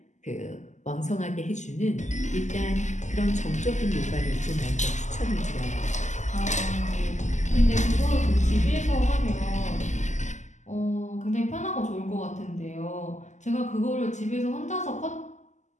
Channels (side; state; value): right; late; 0.34 ms